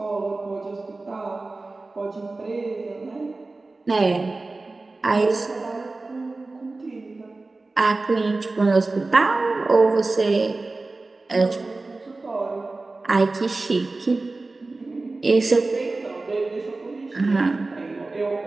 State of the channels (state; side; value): quieter; left; 3.4 dB